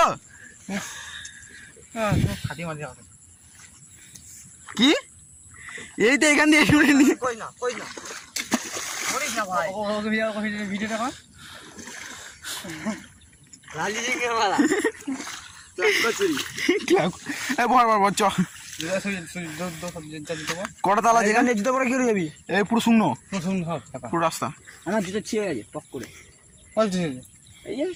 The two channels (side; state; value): both; identical; correlation 1.00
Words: কি? এই তো এখান দিয়ে কটা তালা যেখানে জুতো পরে কি যাবি? এই পুরো শূন্য পুরো রাস্তা। আমার জুতো ছিঁড়ে গেছে পক করে। এই যে